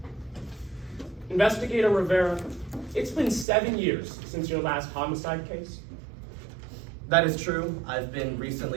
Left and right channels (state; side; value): drops out; left; at 3.5 s